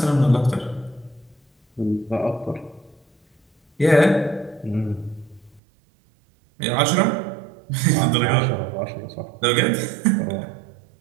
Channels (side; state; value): left; drops out; at 5.6 s